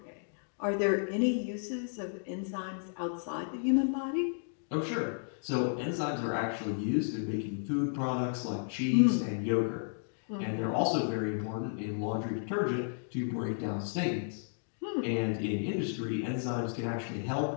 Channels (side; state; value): right; silent; digital silence